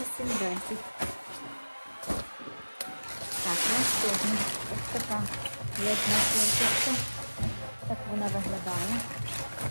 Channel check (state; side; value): inverted; both; correlation -1.00